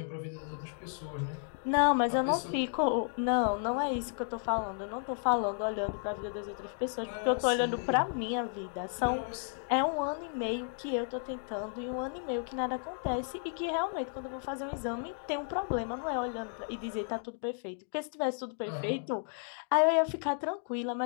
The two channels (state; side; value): silent; right; 56 dB below the other